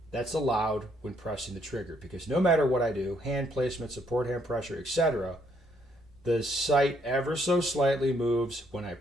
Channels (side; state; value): both; normal; correlation 0.71